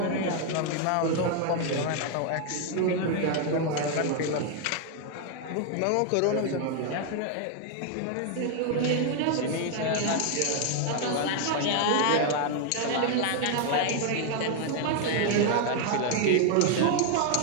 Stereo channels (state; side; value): different; both; correlation 0.00